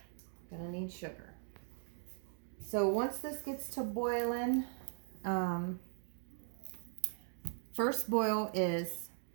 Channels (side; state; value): left; silent; digital silence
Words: Gonna need sugar. So once this gets to boiling, first boil is